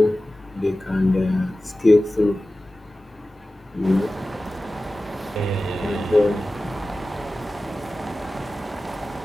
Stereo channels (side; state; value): both; normal; correlation 0.96